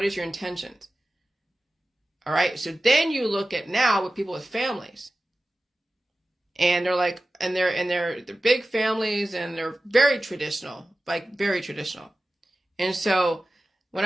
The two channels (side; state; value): both; normal; correlation 0.95